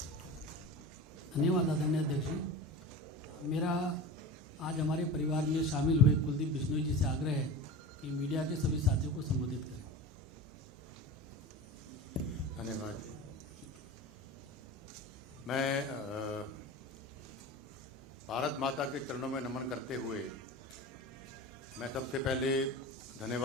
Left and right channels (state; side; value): normal; both; correlation 0.31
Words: धन्यवाद आदरणीय अध्यक्ष जी। मेरा आज हमारे परिवार में शामिल हुए कुलदीप बिश्नोई जी से आग्रह है कि मीडिया के सभी साथियों को संबोधित करें। धन्यवाद। मैं भारत माता के चरणों में नमन करते हुए मैं सबसे पहले